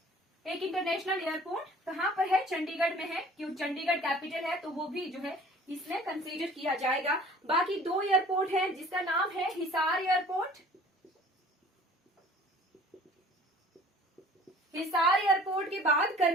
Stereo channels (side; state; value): both; normal; correlation 0.49